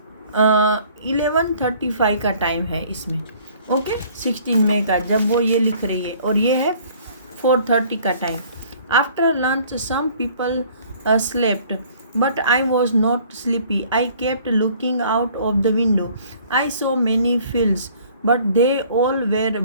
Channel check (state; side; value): inverted; both; correlation -0.55